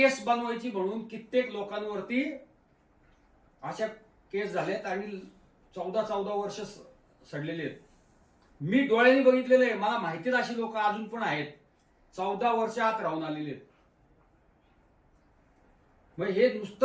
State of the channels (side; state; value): both; identical; correlation 1.00